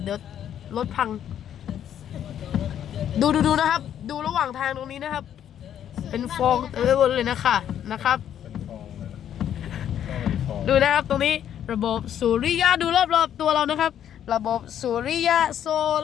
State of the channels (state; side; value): quieter; right; 10.0 dB